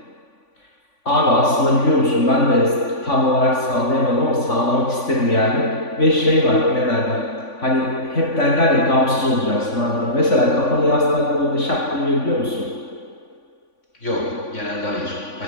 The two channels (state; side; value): late; right; 3.5 ms